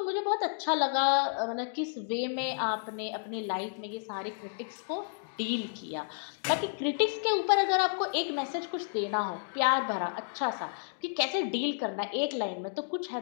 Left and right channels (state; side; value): silent; right; digital silence